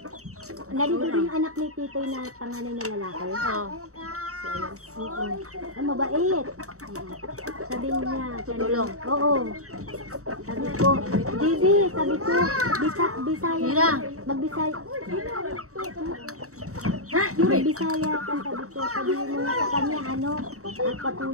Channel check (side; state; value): left; late; 0.65 ms